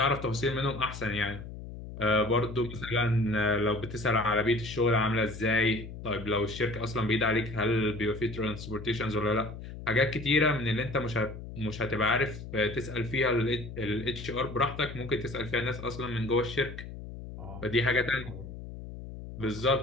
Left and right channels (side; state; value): left; noise; hum, 11 dB below the sound